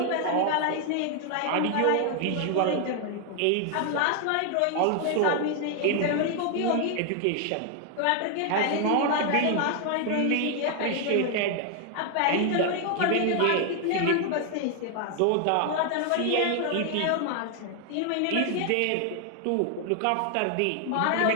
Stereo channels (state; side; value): different; both; correlation 0.00